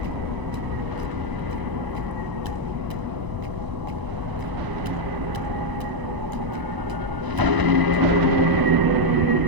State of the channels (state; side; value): late; left; 1.0 ms